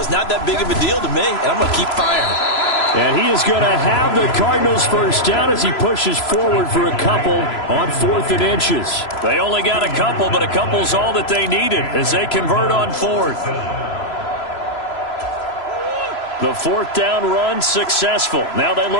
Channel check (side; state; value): right; late; 3.0 ms